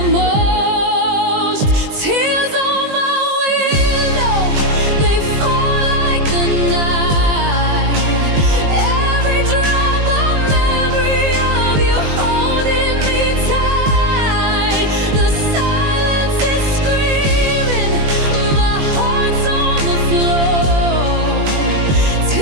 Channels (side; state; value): left; late; 20 ms